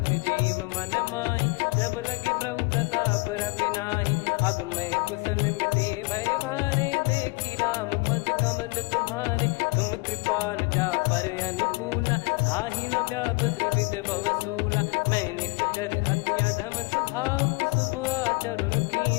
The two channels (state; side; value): quieter; right; 26.4 dB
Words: जीव मन माही, जब लगी प्रभु प्रताप रवि नाही, अब मैं कुशल मिटे भय भारे, देखी राम पद कमल तुम्हारे, तुम कृपाल जा पर अनुकूला, ताहि न व्याप त्रिविध भवसूला, मैं निश्चर अति अधम सुभाऊ, शुभ आचरण